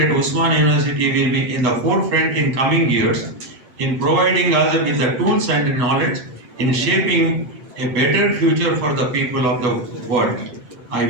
Usmania University will be in the forefront in coming years in providing us with the tools and knowledge in shaping a better future for the people of the world. I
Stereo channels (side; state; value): left; late; 8.8 ms